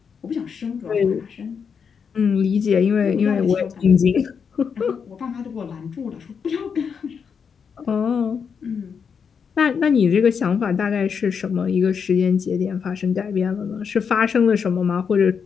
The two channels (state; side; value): quieter; right; 6.5 dB